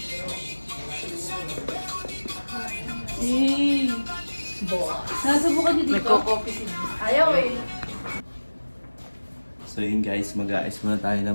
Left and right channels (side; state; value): both; inverted; correlation -1.00